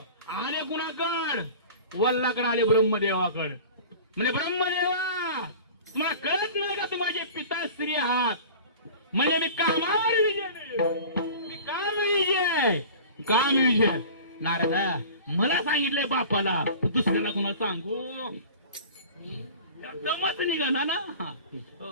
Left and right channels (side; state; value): both; inverted; correlation -0.40